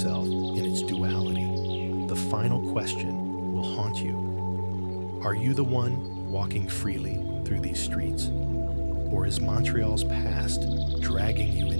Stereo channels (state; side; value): inverted; both; correlation -1.00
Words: in its duality, the final question will haunt you. Are you the one walking freely through these streets? Or is Montreal's past dragging you